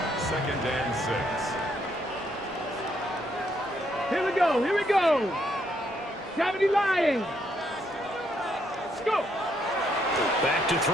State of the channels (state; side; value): normal; both; correlation 0.73